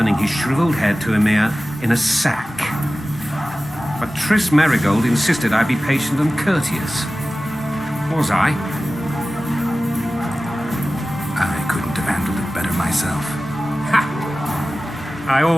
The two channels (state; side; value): normal; both; correlation 0.96